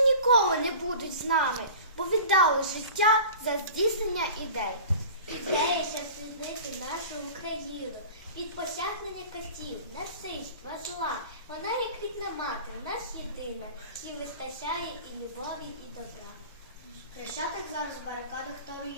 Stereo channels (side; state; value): both; inverted; correlation -0.39